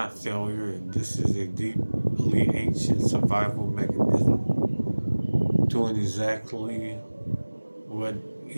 failure. This is a deeply ancient survival mechanism doing exactly what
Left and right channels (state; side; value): inverted; both; correlation -1.00